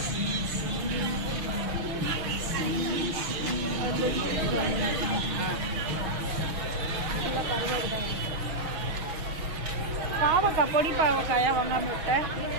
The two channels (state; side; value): late; left; 6.3 ms